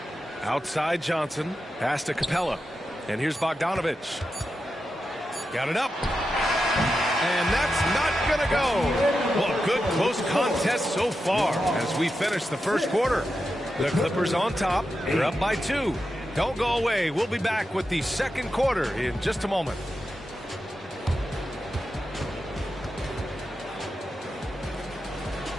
Outside Johnson. Pass to Capella. And here's Bogdanovic. Got it up. And that's not going to go. Well, good close contest so far as we finish the first quarter. The Clippers on top. They're up by 2. Don't go away. We'll be back with the second quarter in just a moment.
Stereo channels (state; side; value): normal; both; correlation 0.89